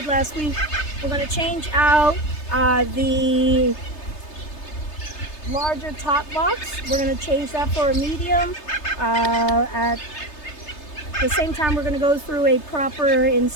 last week, we're going to change out the larger top box. We're going to change that for a medium. At the same time, we're going to go through a proper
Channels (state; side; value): late; right; 3.3 ms